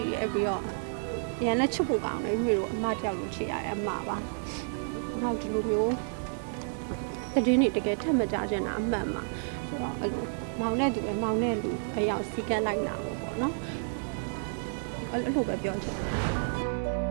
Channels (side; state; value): left; silent; digital silence